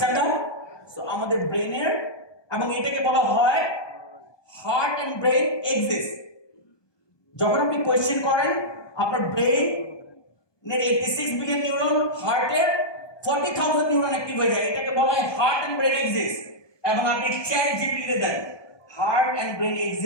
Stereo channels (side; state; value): right; late; 1.2 ms